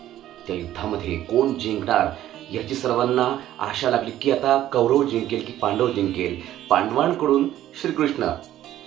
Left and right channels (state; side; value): quieter; left; 12.9 dB